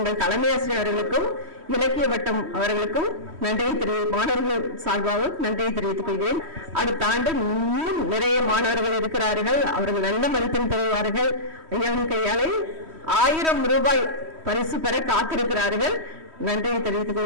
தலைமை ஆசிரியர் அவர்களுக்கும் இலக்கிய வட்டம் அவர்களுக்கும் மாணவர்கள் சார்பாக நன்றியை தெரிவித்துக் கொள்கிறேன். அடுத்த ஆண்டு இன்னும் நிறைய மாணவர்கள் இருக்கிறார்கள். அவர்கள் நல்ல மதிப்பெண் பெறுவார்கள். ஐயாவின் கையாலே 1000 ரூபாய் பரிசு பெற காத்திருக்கிறார்கள். நன்றியை தெரிவித்துக்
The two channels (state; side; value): late; left; 3.1 ms